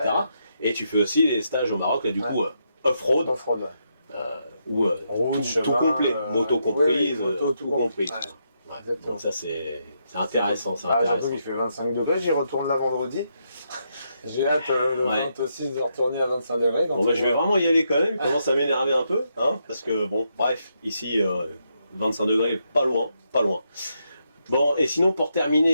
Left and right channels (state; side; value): inverted; both; correlation -0.80